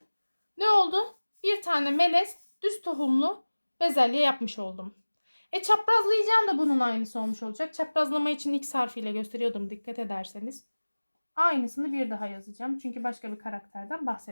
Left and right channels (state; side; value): inverted; both; correlation -1.00